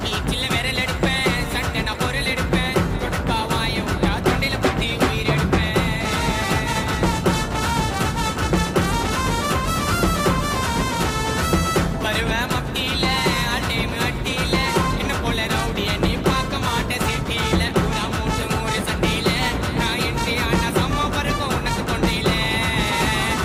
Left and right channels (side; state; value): both; identical; correlation 1.00